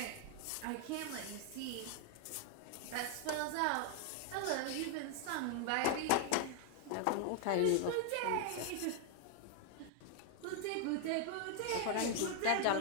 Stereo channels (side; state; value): both; different; correlation 0.00